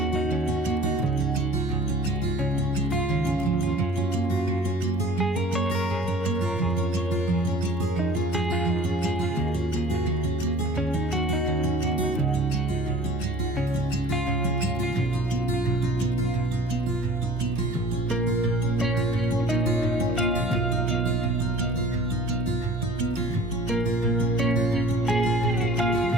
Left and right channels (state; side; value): normal; both; correlation 0.47